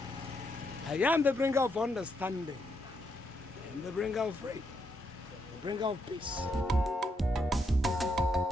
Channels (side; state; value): both; normal; correlation 0.78